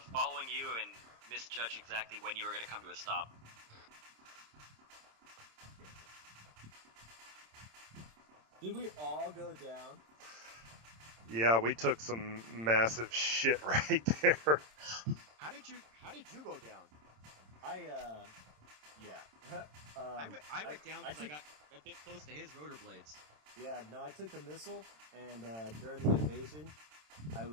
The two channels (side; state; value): left; late; 27 ms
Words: following you and misjudged exactly when you were going to come to a stop. Did we all go down? Yeah, we took some massive shit right there. How did you go down? Yeah. I went down because I took- got a bit close to his rotor blades. Yeah, no, I took the missile, and during the invasion, I